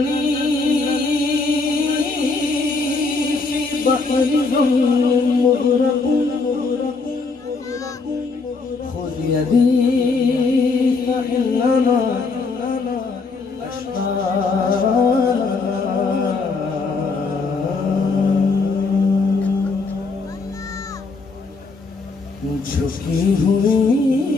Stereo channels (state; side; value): quieter; right; 4.1 dB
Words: फी बहरिन मुग़रक़ुन खुद यदी फइन्नमा झुकी हुई